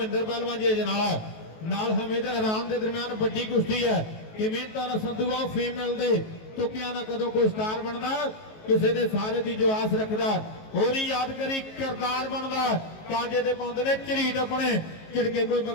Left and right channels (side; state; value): right; late; 19 ms